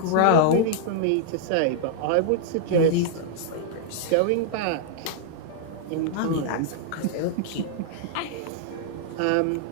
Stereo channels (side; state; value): both; different; correlation -0.01